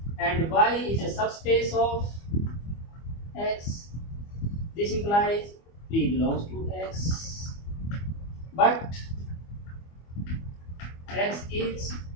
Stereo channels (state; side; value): late; right; 25 ms